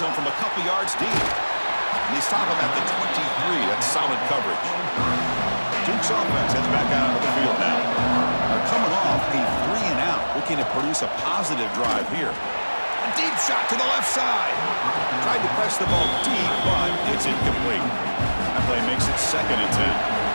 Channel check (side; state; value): both; inverted; correlation -1.00